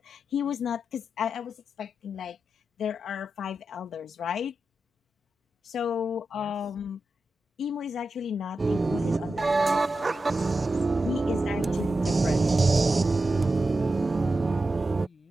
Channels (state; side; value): normal; both; correlation 0.90